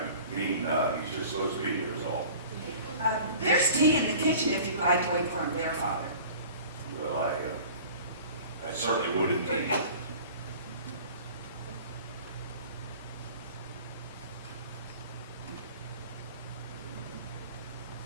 mean, he's just supposed to be here is all. There's tea in the kitchen if you'd like to wait for him there, Father. Well, I certainly would indeed.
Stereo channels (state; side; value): inverted; both; correlation -0.43